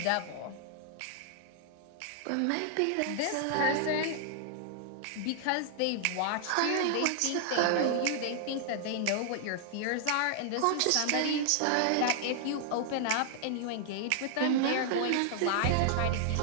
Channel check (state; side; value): different; both; correlation -0.01